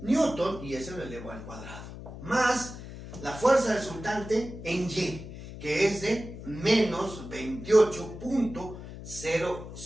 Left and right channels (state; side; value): noise; left; hum, 12 dB below the sound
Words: y eso lo elevo al cuadrado, más la fuerza resultante en Y, que es de menos